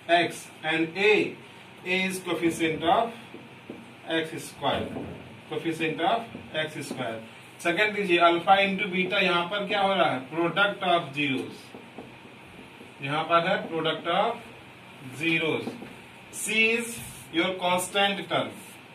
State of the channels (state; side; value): identical; both; correlation 1.00